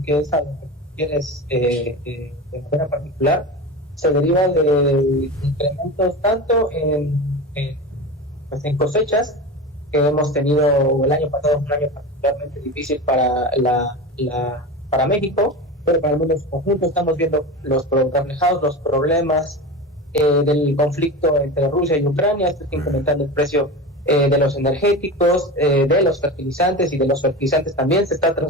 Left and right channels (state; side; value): normal; both; correlation 0.26